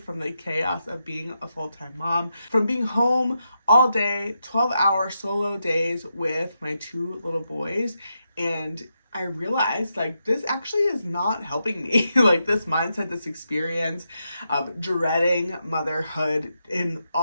the chaos of being a full-time mom, from being home all day, 12-hour solo days with my two little boys. And I realized like this actually is not helping me. Like this mindset, this experience of dreading motherhood in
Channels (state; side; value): inverted; both; correlation -0.85